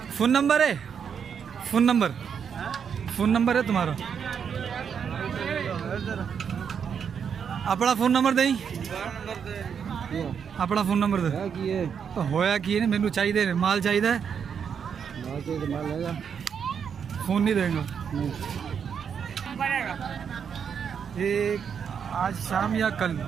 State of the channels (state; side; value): quieter; left; 7.2 dB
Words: फ़ोन नंबर है? फ़ोन नंबर है तुम्हारा? अपना फ़ोन नंबर दें। अपना फ़ोन नंबर दे। तो होया कि नहीं, मैनू चाहिए माल चाहिए। फ़ोन नहीं देंगे एक आज शाम या कल